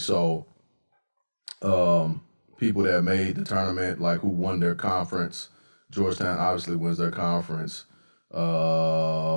So, people that made the tournament, like who won their conference, Georgetown obviously wins their conference.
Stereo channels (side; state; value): both; inverted; correlation -1.00